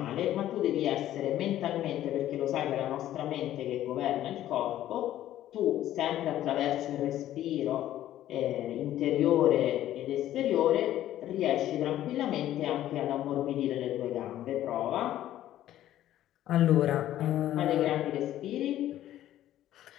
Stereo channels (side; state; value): right; quieter; 12.9 dB